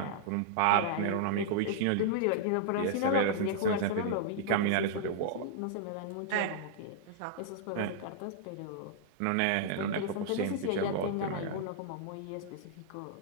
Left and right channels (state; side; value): different; both; correlation -0.01